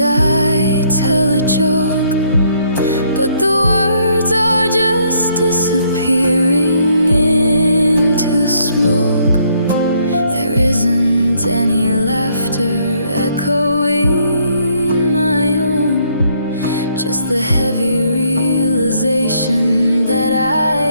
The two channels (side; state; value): both; inverted; correlation -0.69